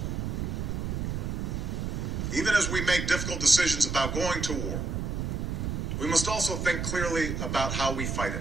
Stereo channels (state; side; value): noise; right; rumble, 2 dB below the sound